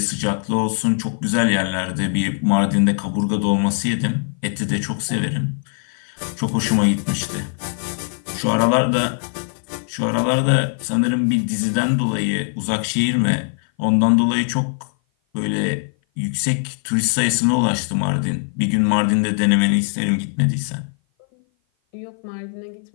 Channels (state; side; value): silent; right; 56 dB below the other